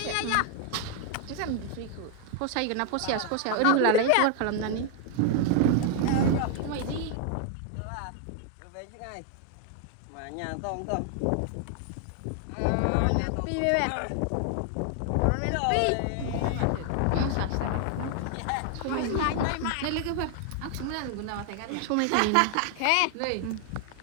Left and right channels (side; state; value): both; different; correlation 0.00